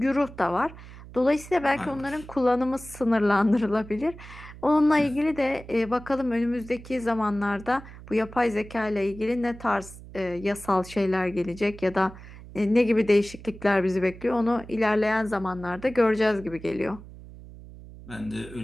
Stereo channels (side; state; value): right; noise; hum, 16 dB below the sound